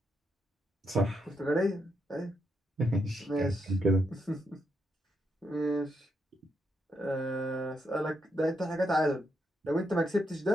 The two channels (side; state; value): both; normal; correlation 0.80